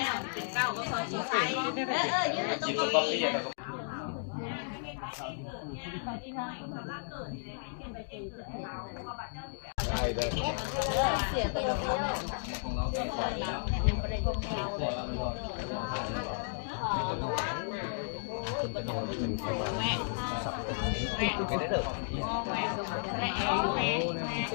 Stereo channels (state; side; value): silent; right; digital silence